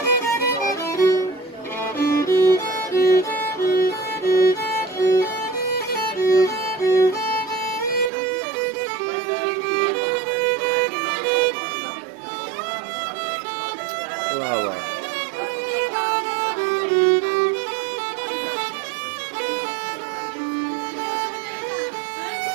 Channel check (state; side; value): drops out; left; at 8.1 s